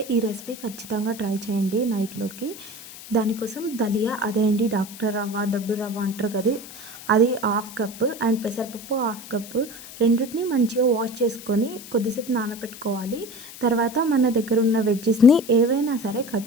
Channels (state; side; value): noise; left; hiss, 15 dB below the sound